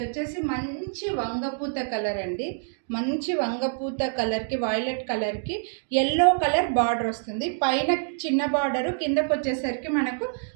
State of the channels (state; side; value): silent; left; digital silence